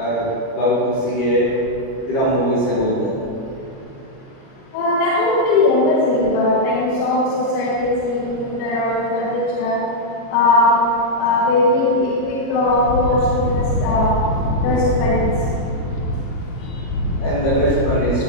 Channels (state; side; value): late; right; 37 ms